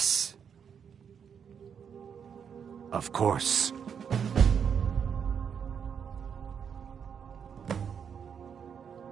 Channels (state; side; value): quieter; left; 7.3 dB